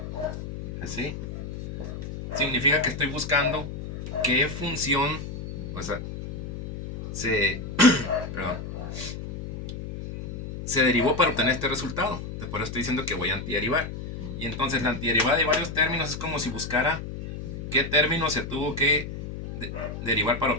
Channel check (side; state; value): left; noise; hum, 8 dB below the sound